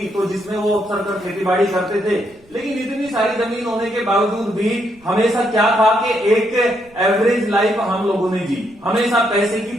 तो जिसमें वो अक्सर कर खेती बाड़ी करते थे। लेकिन इतनी सारी जमीन होने के बावजूद भी हमेशा क्या था कि एक एवरेज लाइफ हम लोगों ने जी। हमेशा पैसे की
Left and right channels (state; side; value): noise; right; rumble, 29 dB below the sound